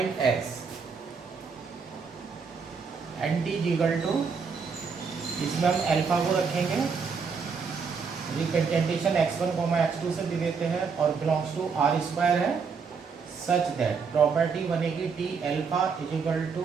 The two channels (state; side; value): quieter; left; 5.5 dB